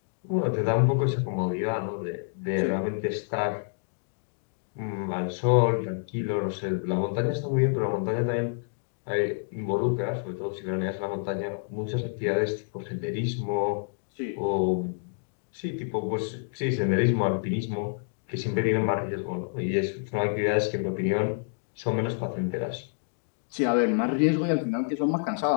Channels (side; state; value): right; silent; digital silence